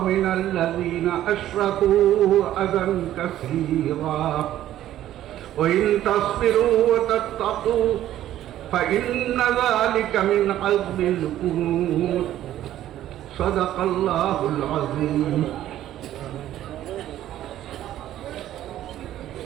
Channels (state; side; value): quieter; left; 12.7 dB